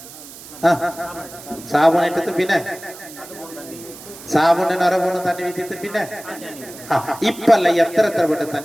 സാബുണിട്ടിട്ട് പിന്നെ സാബുന്റെ നിറപോണ് തന്നെ വീത്തിട്ട് പിന്നെ ഇപ്പല്ല എത്ര പെട്ട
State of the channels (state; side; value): noise; right; hiss, 16 dB below the sound